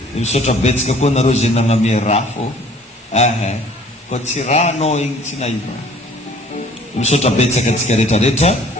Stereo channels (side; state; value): both; normal; correlation 0.54